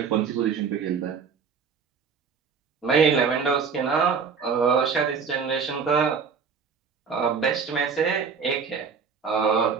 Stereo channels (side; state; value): left; quieter; 5.9 dB